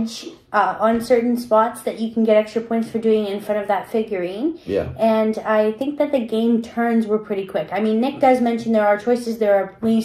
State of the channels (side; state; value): both; identical; correlation 1.00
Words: on certain spots that you can get extra points for doing in front of that figurine. Yeah. And I think that the game turns were pretty quick. I mean, Nick does mention there are choices, there are